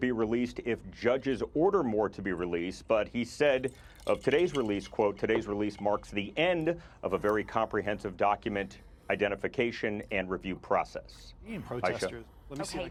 released if judges order more to be released, but he said of today's release, quote, today's release marks the end of a very comprehensive document identification and review process. Protesters. Let me see.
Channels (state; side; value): identical; both; correlation 1.00